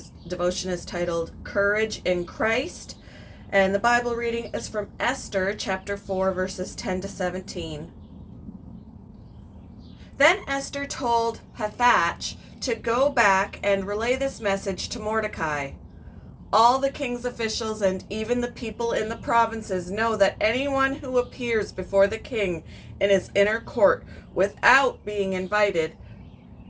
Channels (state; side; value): identical; both; correlation 1.00